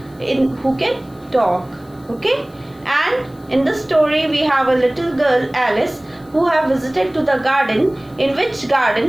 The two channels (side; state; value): left; noise; hiss, 30 dB below the sound